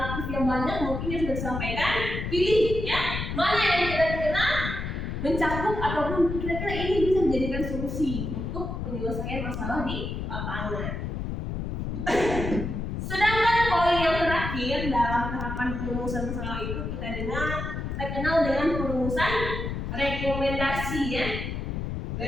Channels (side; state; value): left; noise; rumble, 4 dB below the sound